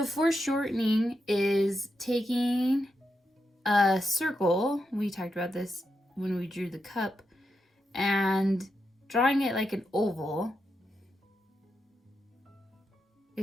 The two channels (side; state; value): both; normal; correlation 0.85